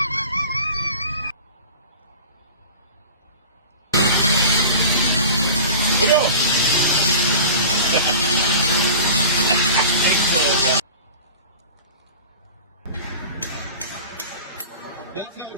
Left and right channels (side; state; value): both; inverted; correlation -0.38